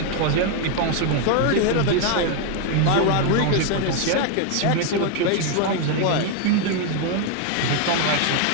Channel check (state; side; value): different; both; correlation 0.01